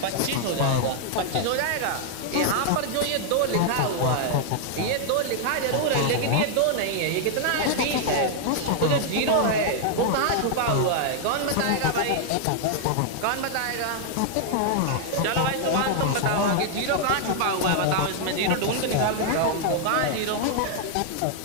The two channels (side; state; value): both; different; correlation 0.00